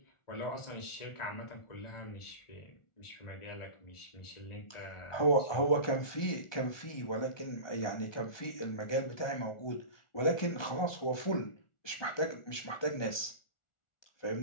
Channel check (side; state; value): right; late; 1.4 ms